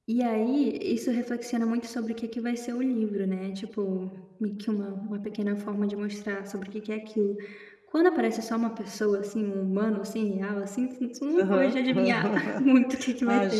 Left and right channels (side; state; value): both; identical; correlation 1.00